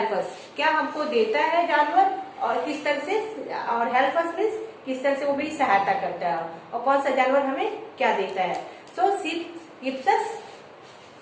us. क्या हमको देता है जानवर और किस तरह से, और help us means किस तरह से वो भी सहायता करता है, और कौन सा जानवर हमें क्या देता है. So sheep gives us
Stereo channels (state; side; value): identical; both; correlation 1.00